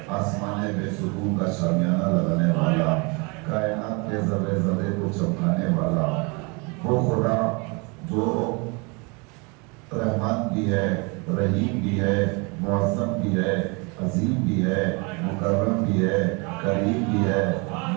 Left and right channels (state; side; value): quieter; left; 30.2 dB